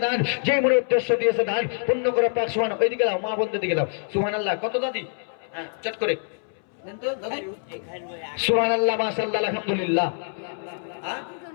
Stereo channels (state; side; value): silent; right; 62 dB below the other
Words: দান, যে মনে উদ্দেশ্য দিয়েছে দান পূর্ণ করে পাক সুবহান। ওইদিকে দাও মা বন্ধের দিকে দাও। সুবহানাল্লাহ। কত দাদি? হ্যাঁ চট করে দেন তো দাদি। সুবহানাল্লাহ, মাশাআল্লাহ, আলহামদুলিল্লাহ।